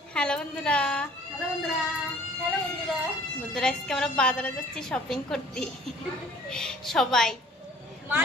Hello বন্ধুরা, hello বন্ধুরা, hello বন্ধুরা। বন্ধুরা আজকে আমরা বাজারে যাচ্ছি শপিং করতে। সবাই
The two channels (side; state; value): both; normal; correlation 0.54